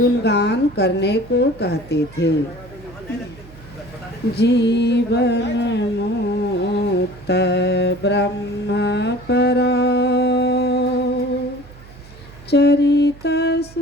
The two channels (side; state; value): right; noise; hum, 20 dB below the sound